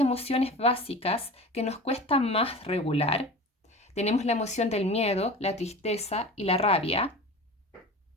básicas que nos cuesta más regular. Tenemos la emoción del miedo, la tristeza y la rabia.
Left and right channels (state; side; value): normal; both; correlation 0.35